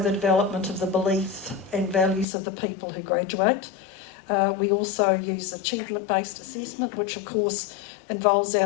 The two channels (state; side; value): drops out; right; at 2.2 s